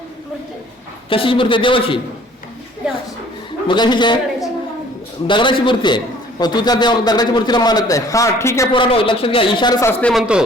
कशाची मूर्ती आहे? देवाची. देवाची. मग कशाची आहे? दगडाची. दगडाची मूर्ती आहे. मग तू त्या दगडाची मूर्तीला मानत नाही. हा ठीक आहे पोरांनो, लक्षात घ्या.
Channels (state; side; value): normal; both; correlation 0.54